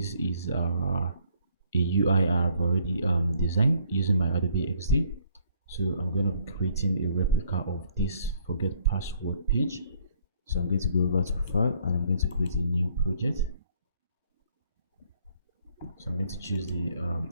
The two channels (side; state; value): both; inverted; correlation -0.64